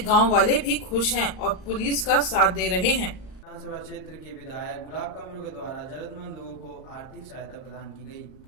वाले भी खुश हैं और पुलिस का साथ दे रहे हैं। विधानसभा क्षेत्र के विधायक गुलाब कमरो के द्वारा जरूरतमंद लोगों को आर्थिक सहायता प्रदान की गई।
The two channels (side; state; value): right; late; 38 ms